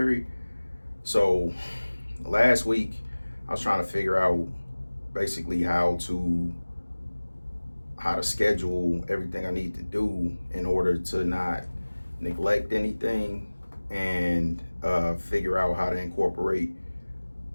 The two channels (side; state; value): both; inverted; correlation -1.00